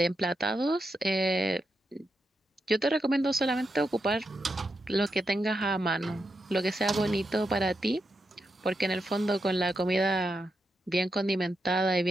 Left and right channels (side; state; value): both; normal; correlation 0.85